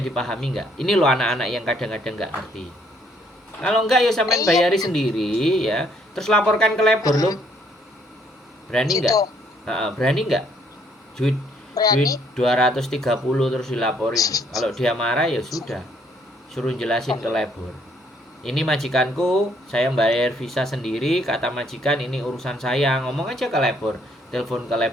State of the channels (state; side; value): normal; both; correlation 0.66